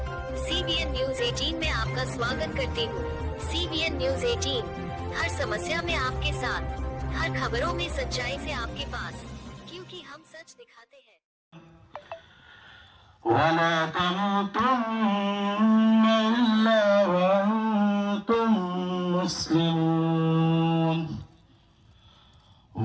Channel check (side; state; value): both; identical; correlation 1.00